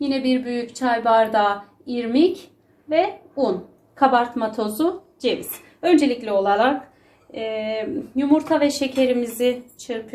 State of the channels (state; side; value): identical; both; correlation 1.00